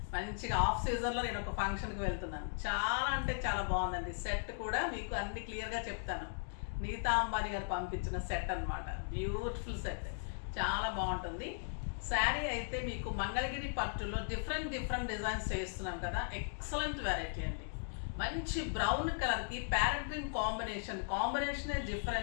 మంచిగా ఆఫ్ సీజన్లో నేను ఒక ఫంక్షన్కి వెళ్తున్నాను. చాలా అంటే చాలా బాగుందండి. సెట్ కూడా మీకు అన్ని క్లియర్గా చెప్తాను. నీతా అంబానీ గారు పంపించిన సెట్ అన్నమాట. బ్యూటిఫుల్ సెట్, చాలా బాగుంటుంది. శారీ అయితే మీకు మంగళగిరి పట్టులో డిఫరెంట్ డిజైన్స్ చేస్తున్నాం కదా. ఎక్సలెంట్ వెరైటీ అండి. మంచి బ్రౌన్ కలర్కి ప్యారెట్ గ్రీన్ కాంబినేషనే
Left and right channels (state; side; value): silent; right; digital silence